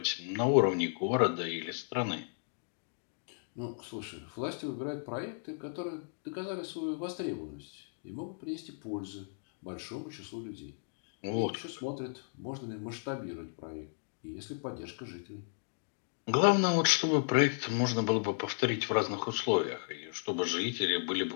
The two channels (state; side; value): silent; right; digital silence